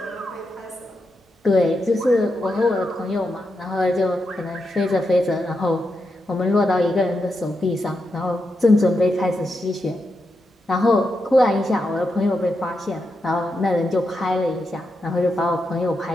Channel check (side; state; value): both; normal; correlation 0.85